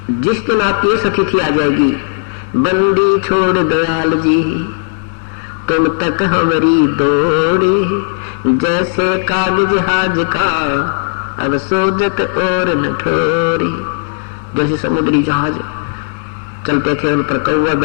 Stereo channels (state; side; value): silent; right; digital silence